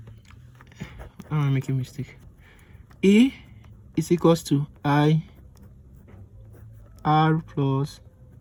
I'm making a mistake. E is equals to I R plus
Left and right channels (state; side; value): identical; both; correlation 1.00